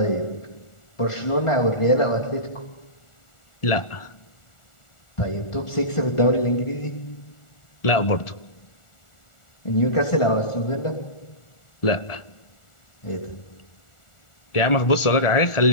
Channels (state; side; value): late; right; 1.4 ms